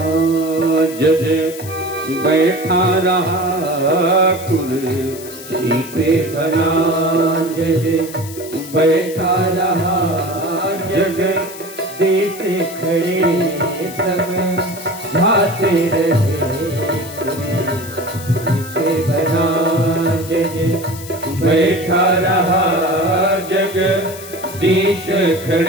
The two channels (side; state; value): left; noise; hiss, 15 dB below the sound